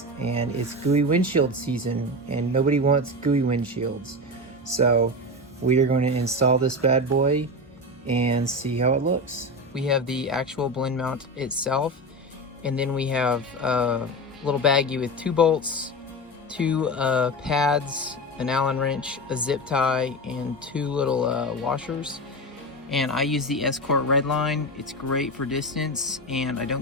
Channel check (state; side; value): normal; both; correlation 0.21